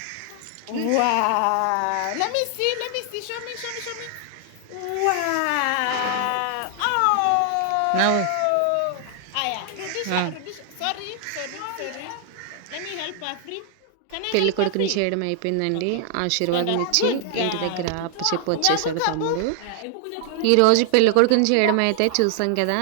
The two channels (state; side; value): different; both; correlation 0.00